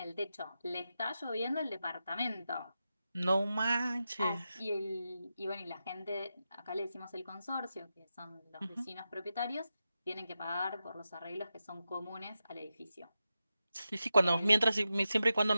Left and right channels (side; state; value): both; inverted; correlation -0.90